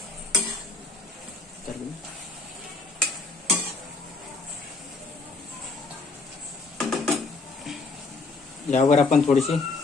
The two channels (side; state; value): right; quieter; 3.8 dB